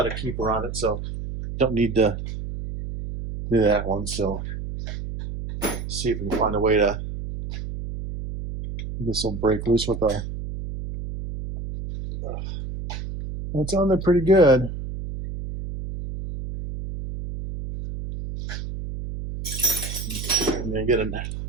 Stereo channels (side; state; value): right; noise; hum, 7 dB below the sound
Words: a keeper on it, so don't need to do that one. So see if we can find a way to, this will break loose with a, it's on there pretty good. And then get it,